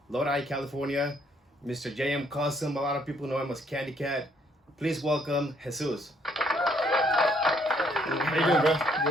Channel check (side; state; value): both; normal; correlation 0.67